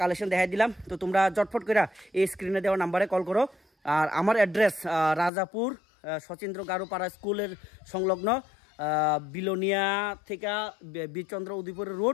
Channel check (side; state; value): right; drops out; at 5.3 s